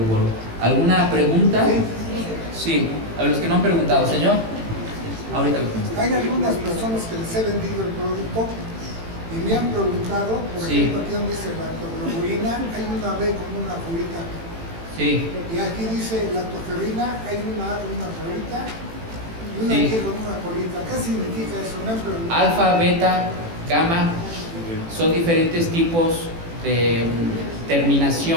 gorro. ¿Alguna pregunta? Sí, a los que no han preguntado, señor. Ahorita lo contesto. Hay algunas personas que les he vendido el producto y me han preguntado, por ejemplo, aquí donde dice lactoglobulina, hay una B con una colita. Sí. Y aquí dice lactoferrina, hay una A con una colita y una G con una colita. ¿Qué significa eso? Me han preguntado. Alfa, beta, gamma son diferentes tipos de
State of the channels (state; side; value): late; left; 18 ms